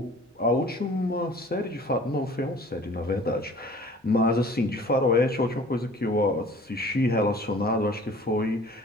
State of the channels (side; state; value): both; normal; correlation 0.48